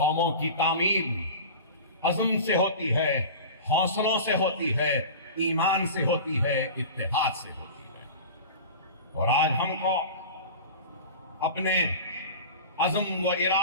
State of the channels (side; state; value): both; inverted; correlation -0.33